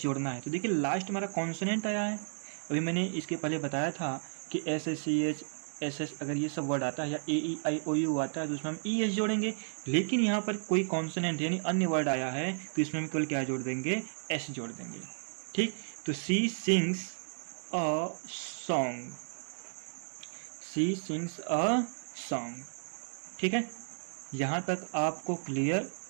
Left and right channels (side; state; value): left; silent; digital silence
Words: जोड़ना है, तो देखिए लास्ट हमारा कॉन्सोनेंट आया है। अभी मैंने इसके पहले बताया था कि S S C H S S अगर ये सब वर्ड आता है या A E I O you आता है तो उसमें हम ई एस जोड़ेंगे, लेकिन यहाँ पर कोई कॉन्सोनेंट यानी अन्य वर्ड आया है तो इसमें हम केवल क्या जोड़ देंगे, एस जोड़ देंगे, ठीक। तो she sings a song, she sings a song, ठीक है। यहाँ तक आपको क्लियर